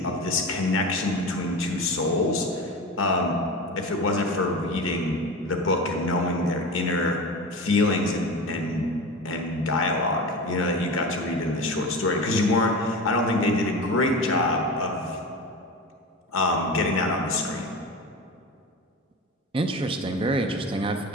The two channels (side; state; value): both; normal; correlation 0.28